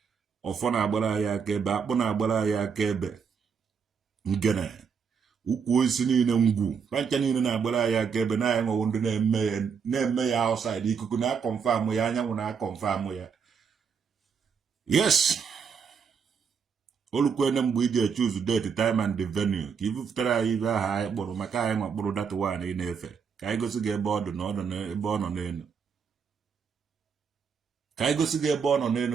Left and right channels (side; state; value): left; quieter; 6.3 dB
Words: ọfọ na-agbara anyị aka ebe akpụ na-agbara anyị aka ebe ngene ukwu osisi niile ngwu pancha niile na-agbara anyị aka ebe na anyị nwewo ndị na-eme ya outside ikuku na-akọnfam ya anyanwụ na-akọnfam ya yes olukwene mgbe iji choose date time and the venue ka ibupụtara anyị ibe aha anyị kpụrụ maka anyị nwa kpụrụ data one ị na-efe ka anyị gosi gị ebe ọ dị na ebe ọ nọ n'elu ka anyị gosi gị ebe ọ nọ n'elu